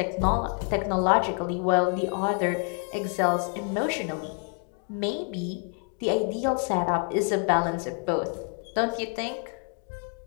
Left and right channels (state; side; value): quieter; right; 35.8 dB